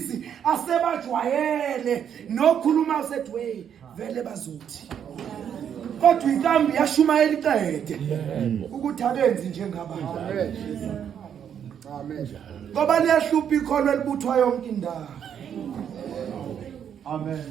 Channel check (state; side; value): quieter; left; 8.6 dB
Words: asebajwayele nokhuluma usethi wey vele bazothi kodwa inkambi yashumayela iqede ukuthi abenzi njengabantu Amen. ngoba liyahlupha ikholwa elibuthwa yonke indawo amen